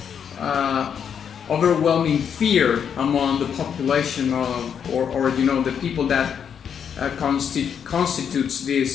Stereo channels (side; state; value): right; quieter; 7.8 dB